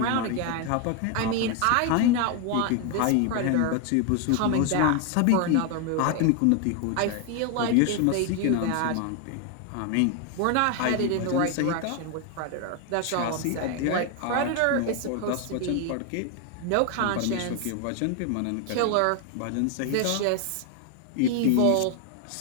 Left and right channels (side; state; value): both; different; correlation 0.01